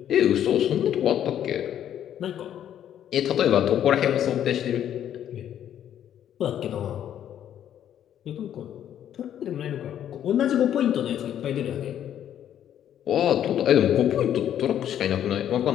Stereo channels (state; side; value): quieter; right; 10.4 dB